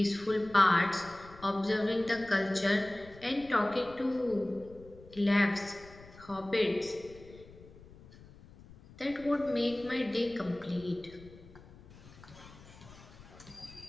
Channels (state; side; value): noise; left; rumble, 21 dB below the sound